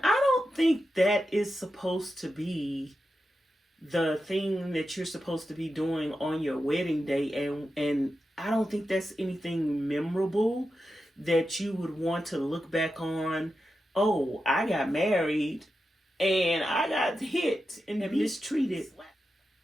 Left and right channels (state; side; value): normal; both; correlation 0.90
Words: I don't think that is supposed to be the thing that you're supposed to be doing on your wedding day. And I don't think that's anything memorable that you would want to look back on. Oh, I got married and I got hit and mistreated